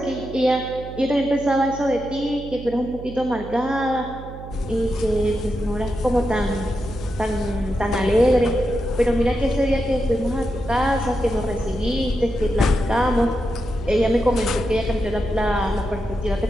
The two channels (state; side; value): noise; right; hum, 13 dB below the sound